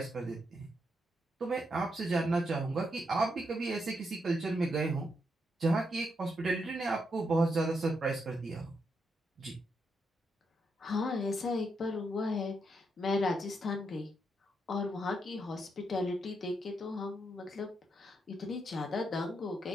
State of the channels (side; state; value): both; normal; correlation 0.80